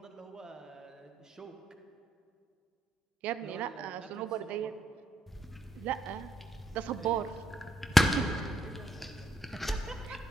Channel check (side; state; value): both; normal; correlation 0.74